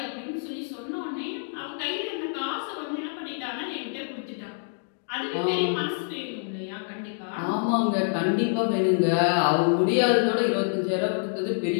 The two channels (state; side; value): silent; right; digital silence